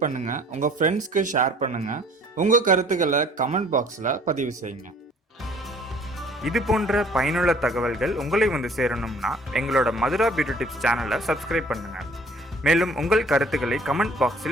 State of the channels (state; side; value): normal; both; correlation 0.54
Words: பண்ணுங்க, உங்க ஃப்ரெண்ட்ஸ்க்கு ஷேர் பண்ணுங்க, உங்க கருத்துக்களை கமெண்ட் பாக்ஸ்ல பதிவு செய்யுங்க. இது போன்ற பயனுள்ள தகவல்கள் உங்களை வந்து சேரணும்னா எங்களோட மதுரா பியூட்டி டிப்ஸ் சேனலை சப்ஸ்கிரைப் பண்ணுங்க. மேலும் உங்கள் கருத்துக்களை கமெண்ட்